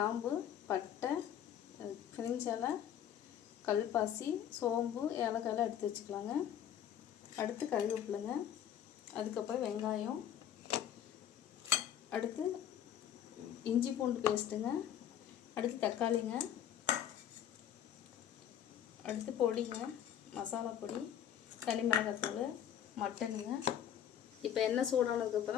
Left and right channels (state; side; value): quieter; right; 10.0 dB